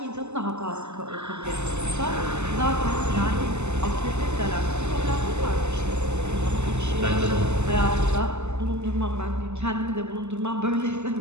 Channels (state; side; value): late; left; 0.82 ms